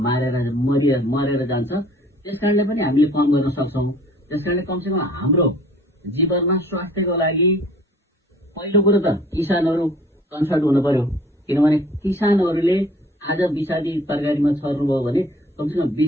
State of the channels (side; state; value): both; normal; correlation 0.53